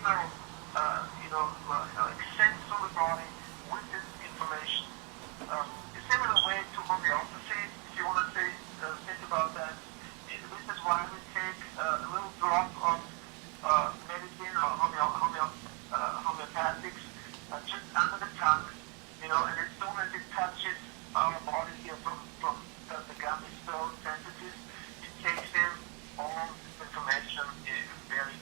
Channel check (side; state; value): left; quieter; 34.2 dB